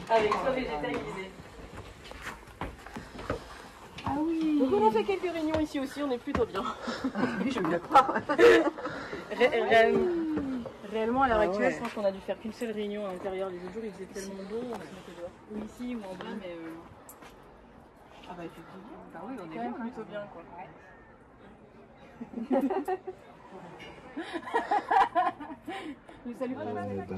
avec toit végétalisé. Ah oui. Donc on a fait quelques réunions ici aussi, on est plutôt bien. Oui, je me le crois. Réellement, à l'heure actuelle, je pense qu'on a dû faire qu'une seule réunion à l'intérieur. Les autres jours, il faisait tellement beau, on se mettait dehors. Ou ici, ou en bas, mais... Ah bah effectivement. Bah oui, on est quand même bien, plutôt bien, quoi. Ouais.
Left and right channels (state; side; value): identical; both; correlation 1.00